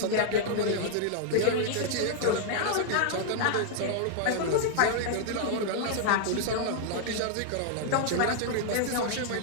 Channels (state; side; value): different; both; correlation -0.01